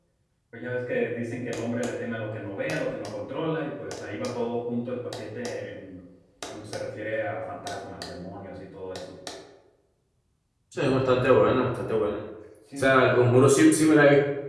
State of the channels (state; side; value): identical; both; correlation 1.00